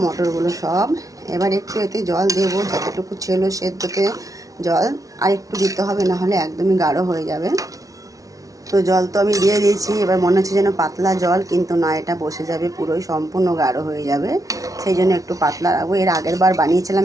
মটরগুলো সব। এবার একটু এতে জল দেবো, যতটুকু ছিল সেদ্ধতে জল আর একটু দিতে হবে, না হলে একদমই গাঢ় হয়ে যাবে। তো জল তো আমি দিয়ে দিয়েছি। এবার মনে হচ্ছে যেন পাতলা জল, কিন্তু না, এটা বসে যাবে, পুরোই সম্পূর্ণ গাঢ় হয়ে যাবে। সেই জন্য একটু পাতলা রাখবো। এর আগের বার বানিয়েছিলাম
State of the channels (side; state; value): left; late; 0.17 ms